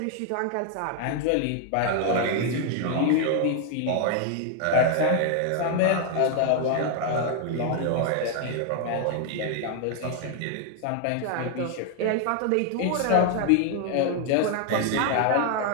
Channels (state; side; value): different; both; correlation 0.00